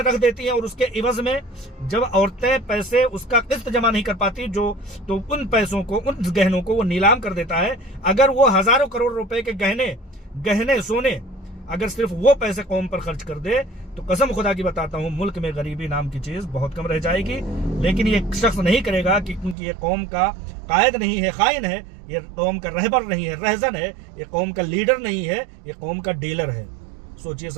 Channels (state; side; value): drops out; left; at 19.6 s